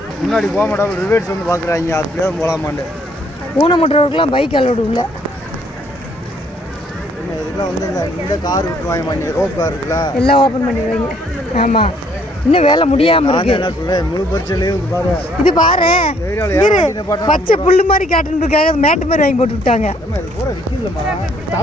முன்னாடி போக மாட்டாங்க, ரிவேட்ஸ் வந்து பார்க்குறாங்க, அப்படியே போகலாமாண்டு. ஊனமுற்றவர்களுக்கெல்லாம் பைக் அலோடு இல்லை. இதெல்லாம் வந்து இந்த கார் விட்டுருவாங்க, ரோப் கார் இருக்குல்ல, எல்லாம் ஓப்பன் பண்ணிடுவாங்க. ஆமாம் இன்னும் வேலை முடியாமல் இருக்கு. என்ன சொல்கிறேன், முழு பரிச்சையிலேயே பாரு. இது பாரு பச்சை புல்லு மாதிரி காட்டுறதுக்காக மேட்டு மாதிரி வாங்கி போட்டு விட்டாங்க.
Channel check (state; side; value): normal; both; correlation 0.65